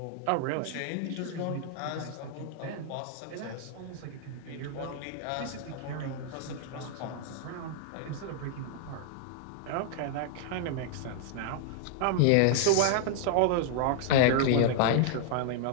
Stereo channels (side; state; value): both; different; correlation 0.00